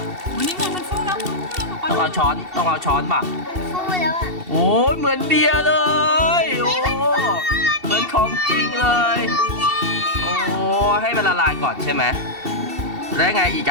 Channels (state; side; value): late; left; 2.7 ms